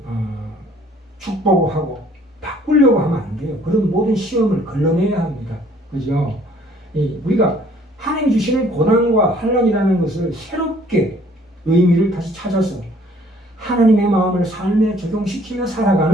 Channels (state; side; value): normal; both; correlation 0.58